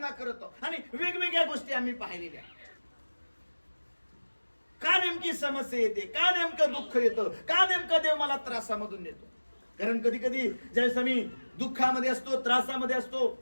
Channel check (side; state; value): both; inverted; correlation -1.00